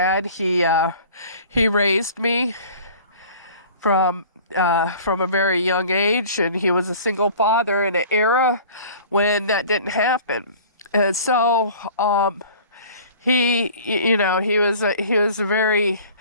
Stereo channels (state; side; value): inverted; both; correlation -0.46